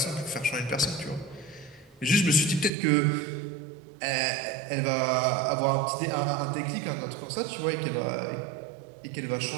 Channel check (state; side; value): drops out; left; at 2.7 s